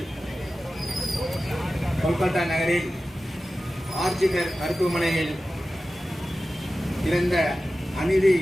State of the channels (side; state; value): both; normal; correlation 0.94